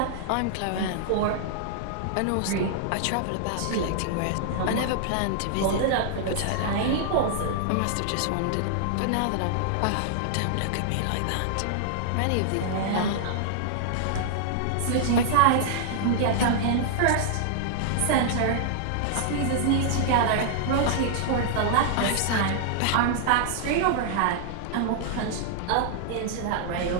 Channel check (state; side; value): different; both; correlation -0.01